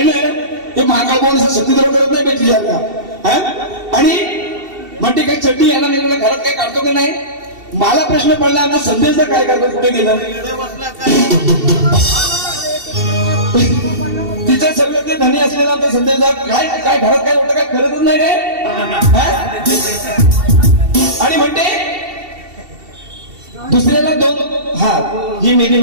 हे महाकाळ बोल सत्यद्रोह करत नाही पाहिजे का? आणि म्हणते काही चड्डी यांना नेलेलं घरात काय काढतो की नाही. मला प्रश्न पडला आता संदेशचा काय करतो, कुठे गेलं? तिचं सगळं ते धनी असलेला आमचा संदेशचा काय काय घरात काय होतं काय करतच नाही काय. आणि म्हणते दुसऱ्याला दोन ही मेली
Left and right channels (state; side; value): late; left; 2.7 ms